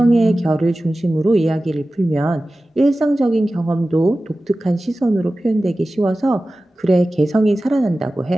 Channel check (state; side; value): normal; both; correlation 0.96